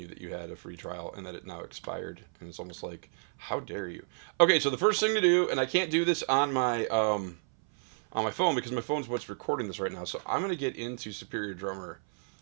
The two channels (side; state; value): left; silent; 57 dB below the other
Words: that you had a free trial and that it now expired, and it's almost like, how dare you? Okay, so the first thing to do, and I can't do this on my phone because my phone's what's recording this right now. So I'm gonna get into Superior Drummer,